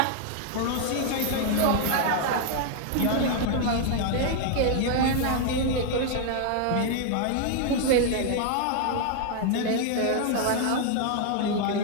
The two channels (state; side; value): different; both; correlation 0.00